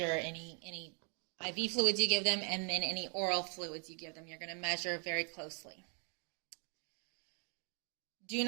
any IV fluids you give them, and then any oral fluids you give them. You're going to measure very closely. Do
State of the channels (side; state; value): left; quieter; 38.2 dB